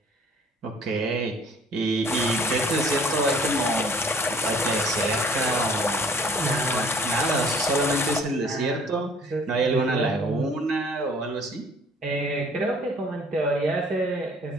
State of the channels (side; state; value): both; normal; correlation 0.55